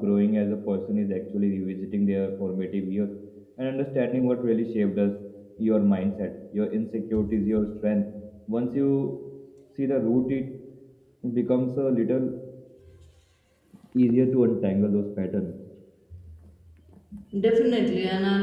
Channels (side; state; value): both; identical; correlation 1.00